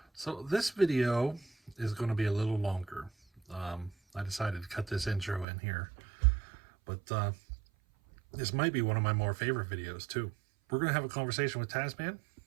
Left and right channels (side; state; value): left; drops out; at 5.5 s